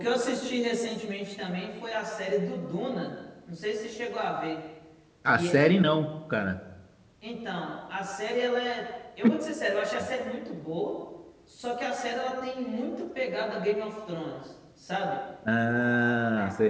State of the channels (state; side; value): identical; both; correlation 1.00